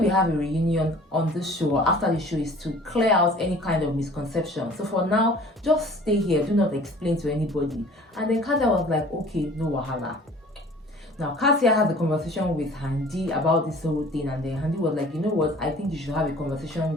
we have a reunion on this show or after the show is to clear out any kind of misconception. So for now, just stay here. Do not explain to anybody. And then Kassia was like, okay, no wahala. Now, Kassia had a conversation with Handy about this whole thing, and then Handy was like, you know what, I think you should have a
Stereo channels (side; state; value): both; normal; correlation 0.48